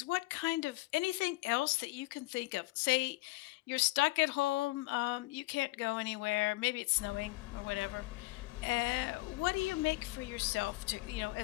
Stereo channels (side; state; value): right; quieter; 21.4 dB